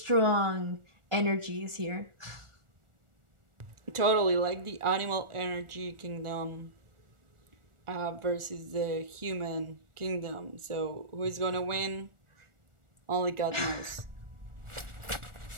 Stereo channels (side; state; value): left; late; 1.4 ms